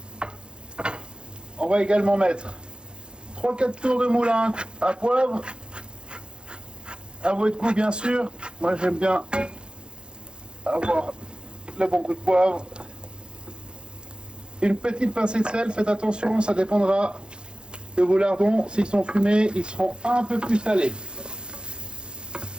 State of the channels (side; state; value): left; late; 0.051 ms